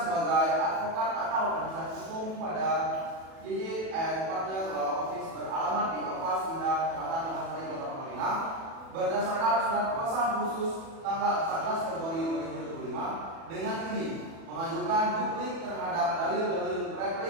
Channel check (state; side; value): late; left; 36 ms